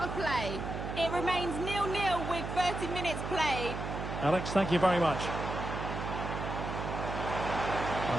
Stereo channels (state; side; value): noise; right; hum, 5 dB below the sound